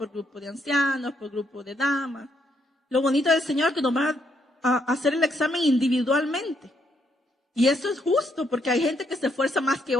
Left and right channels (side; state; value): both; normal; correlation 0.75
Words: grupo de ancianos, por grupo de damas. Lo bonito del Señor es que nos va a hacer el examen individualmente. Y eso es justo porque hay gente que se esfuerza más que